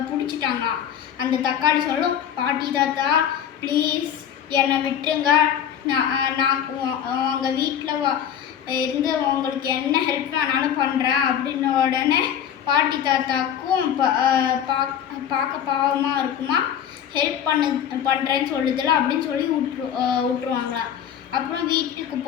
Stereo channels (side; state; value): right; quieter; 9.3 dB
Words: பிடிச்சிட்டாங்களாம். அந்த தக்காளி சொல்லும், பாட்டி தாத்தா ப்ளீஸ் என்னை விட்டுருங்க, நான் உங்கள் வீட்டில் இருந்து உங்களுக்கு என்ன ஹெல்ப் வேணாலும் பண்ணுறேன் அப்படின்ன உடனே பாட்டி தாத்தாக்கும் பார்க்க பாவமாக இருக்குமா. ஹெல்ப் பண்ணுறேன்னு சொல்லுதில்ல அப்படின்னு சொல்லி விட்டுருவாங்களா. அப்புறம் வீட்டுக்கு